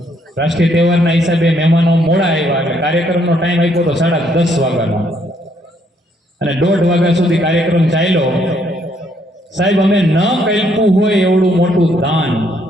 રાષ્ટ્રીય તહેવારના હિસાબે મહેમાનો મોડા આવ્યા, એટલે કાર્યક્રમનો ટાઈમ આપ્યો તો 10:30 વાગ્યાનો, અને 1:30 વાગ્યા સુધી કાર્યક્રમ ચાલ્યો. સાહેબ અમે ન કલ્પ્યું હોય એવડું મોટું દાન.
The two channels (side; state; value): both; normal; correlation 0.70